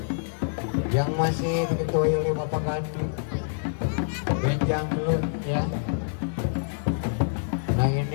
yang masih diketuai oleh Bapak Gandhi. Benjang gelut, ya. Nah,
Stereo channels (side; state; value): right; silent; 58 dB below the other